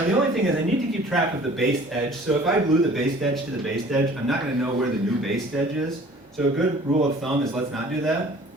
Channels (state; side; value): normal; both; correlation 0.50